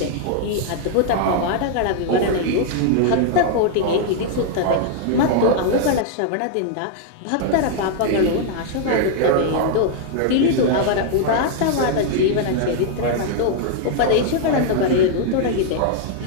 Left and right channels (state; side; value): different; both; correlation -0.01